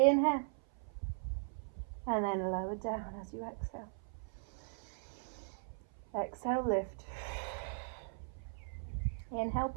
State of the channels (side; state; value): left; silent; 52 dB below the other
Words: and then lower down as you exhale. Exhale, lift. Inhale,